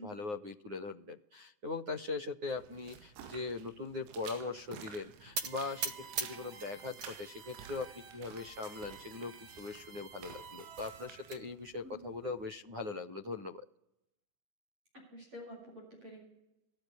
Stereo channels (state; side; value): late; left; 9.7 ms